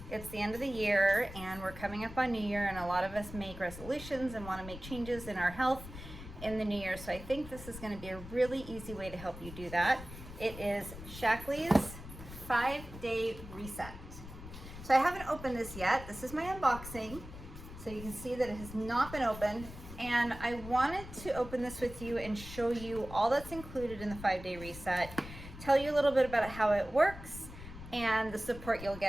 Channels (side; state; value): left; noise; rumble, 13 dB below the sound